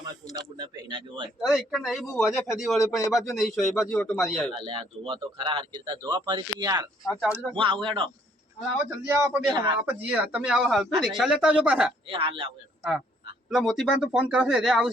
મારા કુંડા બુંડા પહેના જોવાય અરે એક નહીં બહુ વજે ફેદી વળે પણ એ બાજુ નહીં છો એ બાજુ ઓટો મારી આવ્યો અલ્યા જોવા તો ખરા હરકી રીતે જોવા ફરીથી યાર આ ચાલુ રાખ હું આવું હેડો આવો જલ્દી આવો આપણે બે આપણે જઈએ તમે આવો હાલ તો રિક્ષા લેતા આવજો પાછા એ હાલ આવું હેડો હા પેલા મોતીબાન તો ફોન કરશે રે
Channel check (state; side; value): normal; both; correlation 0.65